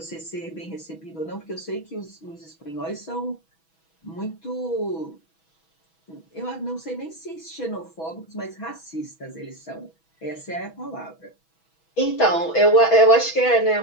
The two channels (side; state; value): right; late; 6.2 ms